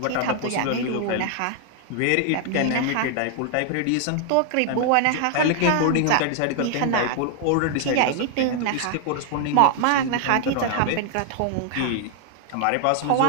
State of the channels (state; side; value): different; both; correlation 0.00